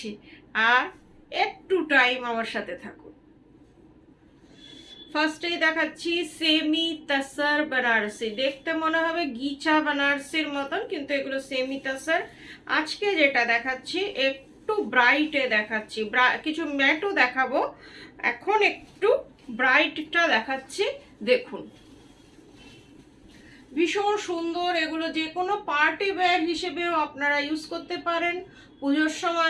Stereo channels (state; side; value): identical; both; correlation 1.00